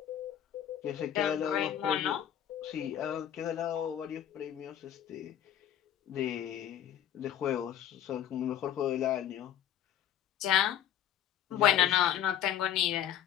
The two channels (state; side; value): quieter; right; 10.6 dB